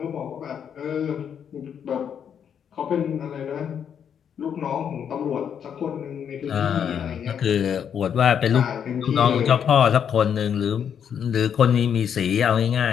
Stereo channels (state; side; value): quieter; right; 8.1 dB